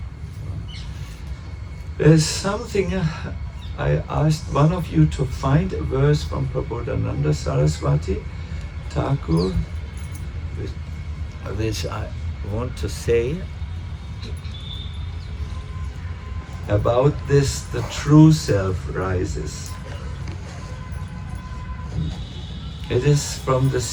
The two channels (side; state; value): both; identical; correlation 1.00